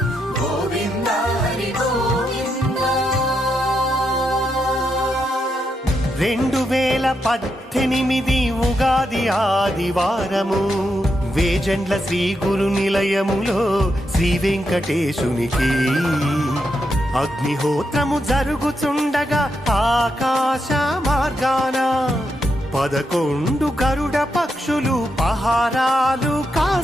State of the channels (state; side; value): normal; both; correlation 0.83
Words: గోవింద హరి గోవింద. 2018 ఉగాది ఆదివారము వేజండ్ల శ్రీ గురు నిలయములో శ్రీ వెంకటేశునికి అగ్నిహోత్రము జరుగుచుండగా ఆకాశ మార్గాన 11 గరుడ పక్షులు పహారాలు